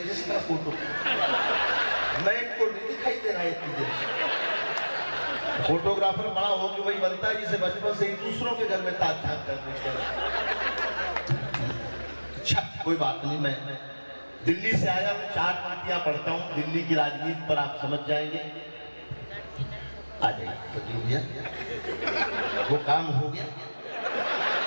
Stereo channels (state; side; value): inverted; both; correlation -1.00